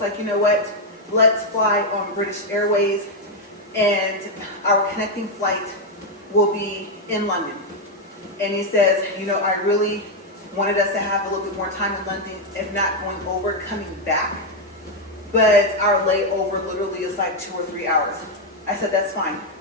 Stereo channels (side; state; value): both; normal; correlation 0.02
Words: like, you know what, let's fly on British Airways, and our connecting flight will be in London. And he says, you know, I really wanted us to have a little bit more time in London, if not going over, coming back. But our layover literally is like 2 or 3 hours. I said, that's fine.